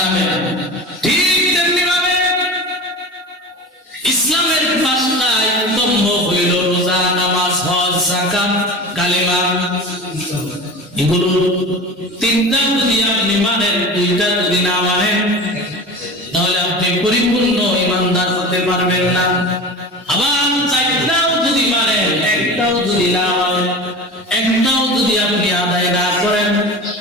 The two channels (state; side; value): normal; both; correlation 0.32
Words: না। ঠিক তেমনি ভাবে ইসলামের 5টা স্তম্ভ হইল রোজা, নামাজ, হজ, যাকাত, কালেমা। এগুলো 3টা যদি আপনি মানেন, 2টা যদি না মানেন, তাহলে আপনি পরিপূর্ণ ইমানদার হতে পারবেন না। আবার 4টাও যদি মানেন, 1টাও যদি না মানেন, 1টাও যদি আপনি আদায় না করেন,